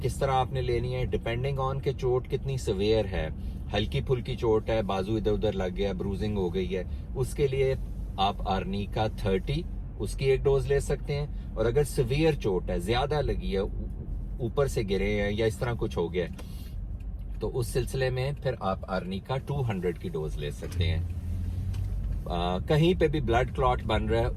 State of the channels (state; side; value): identical; both; correlation 1.00